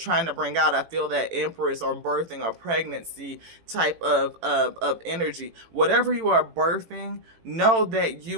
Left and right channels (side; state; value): left; late; 18 ms